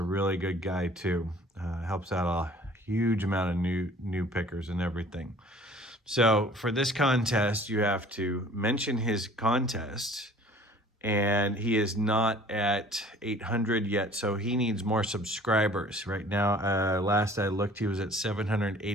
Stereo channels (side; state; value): both; normal; correlation 0.50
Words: really good guy too. Helps out a huge amount of new pickers and everything. So for this contest, you have to mention his contest, and he is not at 800 yet, so he needs more subscribers. Right now, last I looked, he was at